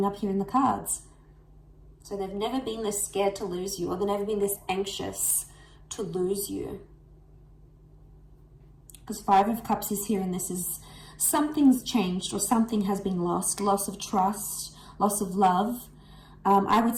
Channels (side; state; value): both; identical; correlation 1.00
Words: up here in the cards. So they've never been this scared to lose you, or they've never been this anxious to lose you. Because Five of Cups is here, and this is something's changed, or something has been lost. Loss of trust, loss of love. I would